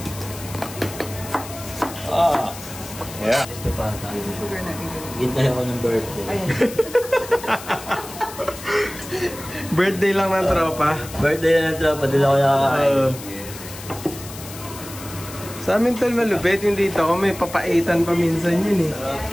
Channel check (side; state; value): left; noise; hiss, 14 dB below the sound